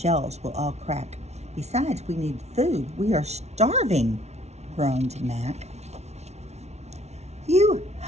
will all crack. Besides, we need food. We are starving," groaned Mac. "You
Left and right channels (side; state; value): left; late; 0.32 ms